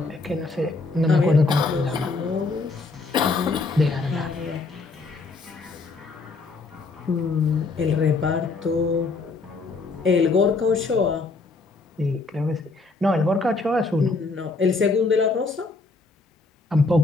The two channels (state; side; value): quieter; right; 3.7 dB